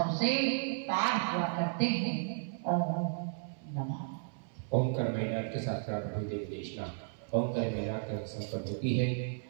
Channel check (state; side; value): silent; left; 55 dB below the other